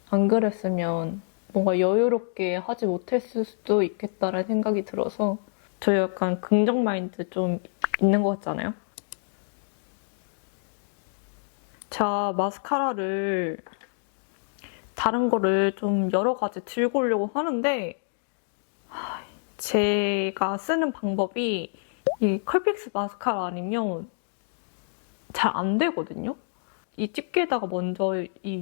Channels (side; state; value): right; silent; digital silence